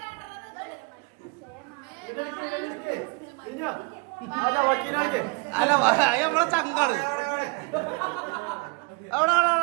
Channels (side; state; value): left; quieter; 29.3 dB